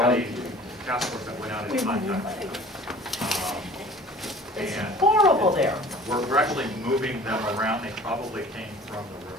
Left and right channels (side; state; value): both; normal; correlation 0.46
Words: task force that went out in contact. It's And horrible there. we're actually moving them around. They probably came from the